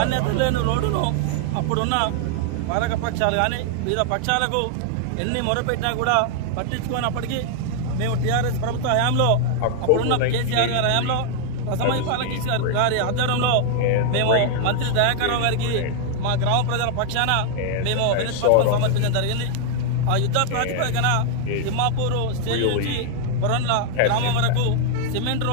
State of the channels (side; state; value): both; different; correlation 0.00